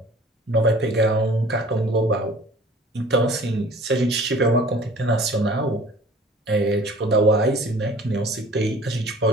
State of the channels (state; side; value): normal; both; correlation 0.48